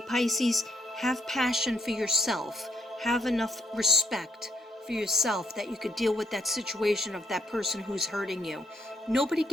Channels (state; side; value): normal; both; correlation 0.74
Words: have passion for yourself. Have enough respect for yourself that you could deal with that situation of that person who's hurting you. Nobody